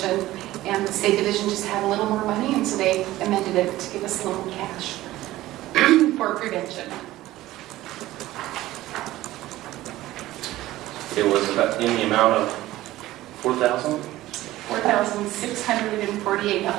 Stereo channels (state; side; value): quieter; left; 16.1 dB